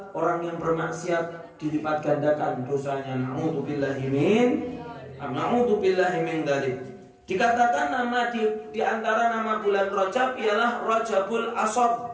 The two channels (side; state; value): both; identical; correlation 1.00